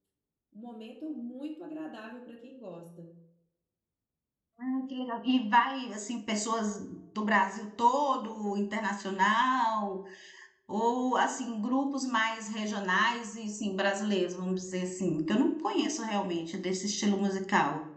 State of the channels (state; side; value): identical; both; correlation 1.00